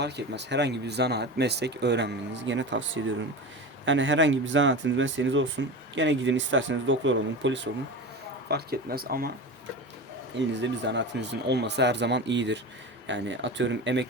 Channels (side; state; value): both; normal; correlation 0.28